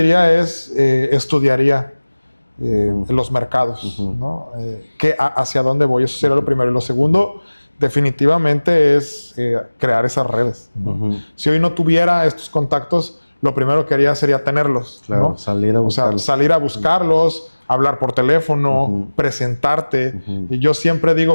es estudiaría los mercados, ¿no? Hacia dónde voy, eso sería lo primero. Y lo segundo, definitivamente es crear esas redes, ¿no? Ujú. Si hoy no tuviera estos contactos, lo primero que haría sería tenerlos, Claro, ¿no? salir a O sea, buscarlos. salir a buscarlos, hablar por teléfono, presentarte. Y yo siempre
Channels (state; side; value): inverted; both; correlation -1.00